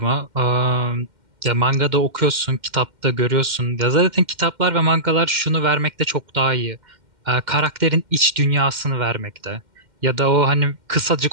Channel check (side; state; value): left; late; 2.1 ms